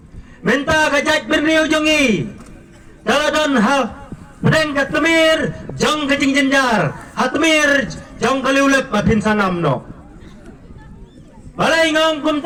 Minta kajat benriu jongi. Daladon hal pedeng katmir jong kajing jenjar. Hatmir jong kaliulep mapin sanam no. Balay ngong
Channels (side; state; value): both; identical; correlation 1.00